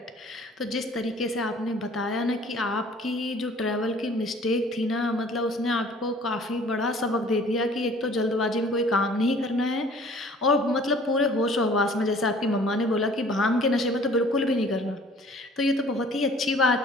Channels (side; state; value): both; normal; correlation 0.52